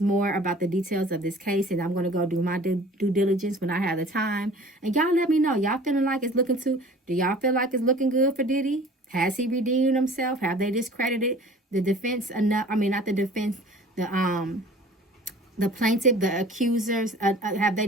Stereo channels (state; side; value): normal; both; correlation 0.46